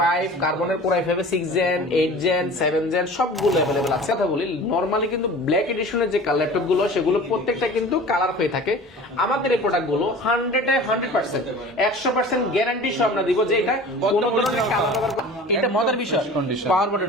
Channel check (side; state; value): both; normal; correlation 0.40